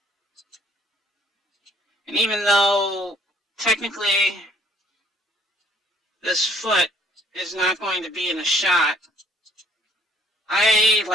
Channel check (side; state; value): both; normal; correlation 0.61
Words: And even though technically this foot is not going to be in a shot, I